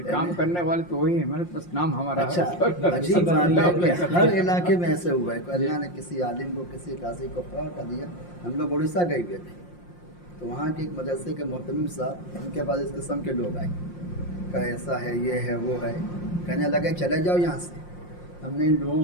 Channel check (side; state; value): right; late; 5.7 ms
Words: کام کرنے والے تو وہی ہیں، محنت بس نام ہمارا اچھا عجیب بات ہے کہ ہر علاقے میں ایسے ہوا ہے کہ اللہ نے کسی عالم کو، کسی قاضی کو فرا کر دیا۔ ہم لوگ اڑیسہ گئے ہوئے تھے، تو وہاں کے ایک مدرسے کے محتمم صاحب، ان کے پاس اس قسم کے لوگ آئے کہ ایسا ہے، یہ ہے، وہ ہے، کہنے لگے چلے جاؤ یہاں سے۔ ہم نے ان لوگوں